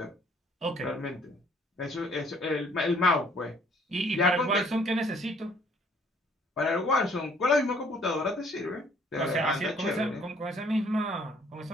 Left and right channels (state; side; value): normal; both; correlation 0.61